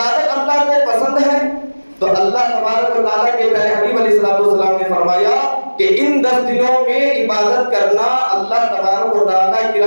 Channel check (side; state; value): both; inverted; correlation -1.00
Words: اللہ کو پسند ہے؟ تو اللہ تبارک و تعالیٰ کے پیارے حبیب علیہ السلام نے فرمایا کہ ان 10 دنوں میں عبادت کرنا اللہ تبارک و تعالیٰ کی